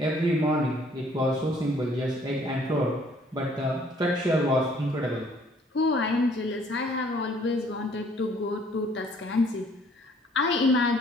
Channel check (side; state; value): both; normal; correlation 0.60